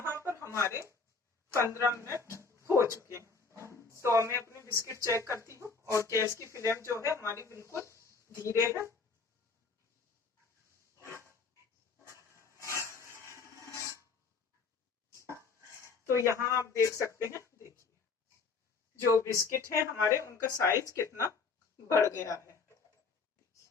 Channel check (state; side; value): quieter; right; 4.6 dB